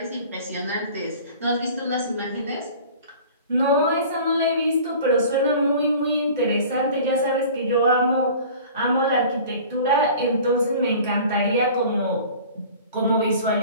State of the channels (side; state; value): both; inverted; correlation -0.44